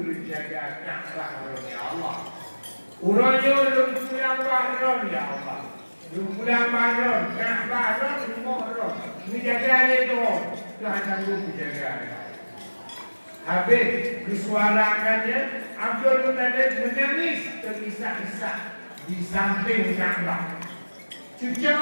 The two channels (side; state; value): both; inverted; correlation -1.00